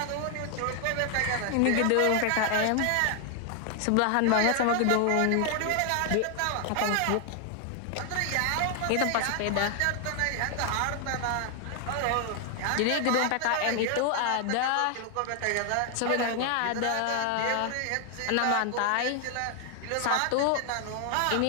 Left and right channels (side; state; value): both; different; correlation 0.00